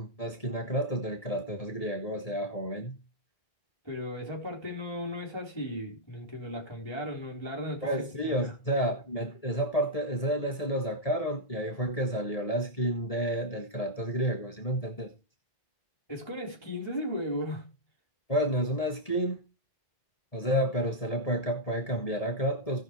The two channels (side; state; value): right; late; 1.7 ms